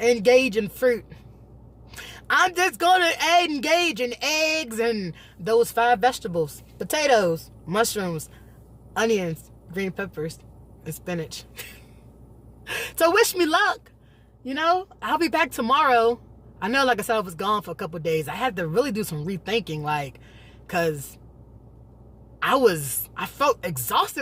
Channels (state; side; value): identical; both; correlation 1.00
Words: in fruit. I'm just going to engage in eggs and those 5 vegetables. Potatoes, mushrooms, onions, green peppers, and spinach. So wish me luck. You know, I'll be back tomorrow. I know, like I said, I was gone for a couple of days. I had to really do some rethinking, like, because I felt